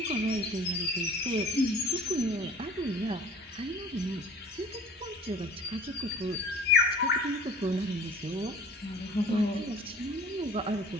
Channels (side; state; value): both; normal; correlation 0.46